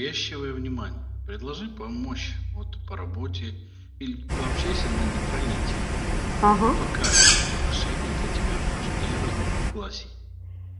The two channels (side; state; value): both; identical; correlation 1.00